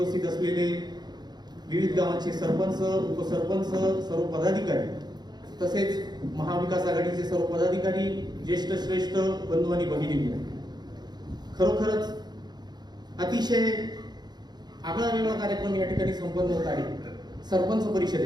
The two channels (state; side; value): late; left; 0.20 ms